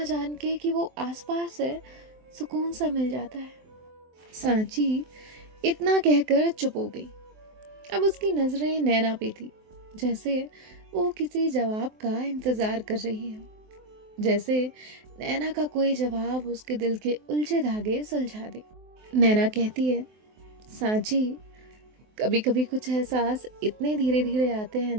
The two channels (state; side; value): late; left; 23 ms